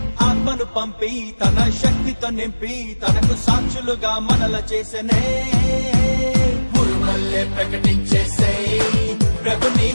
ఆత్మను పంపి తన శక్తితో నింపి తనకు సాక్షులుగా మనల చేసనే ఉరుమల్లే ప్రకటించేసే ప్రభుని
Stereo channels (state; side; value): inverted; both; correlation -1.00